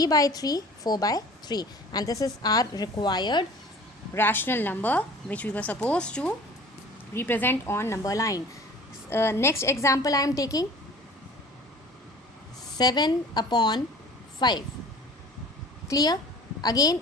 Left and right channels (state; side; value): normal; both; correlation 0.44